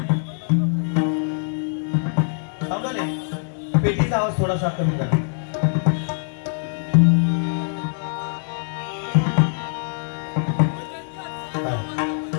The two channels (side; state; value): right; silent; 62 dB below the other